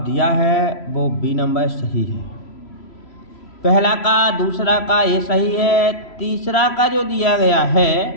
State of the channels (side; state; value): right; late; 3.0 ms